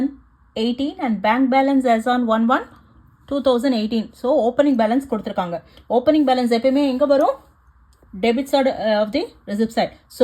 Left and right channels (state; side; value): identical; both; correlation 1.00